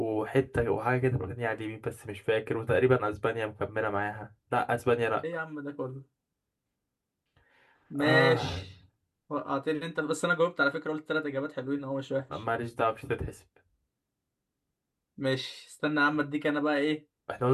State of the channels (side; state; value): both; identical; correlation 1.00